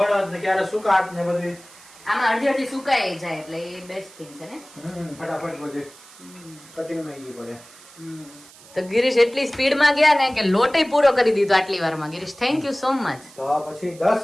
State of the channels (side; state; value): right; noise; hiss, 22 dB below the sound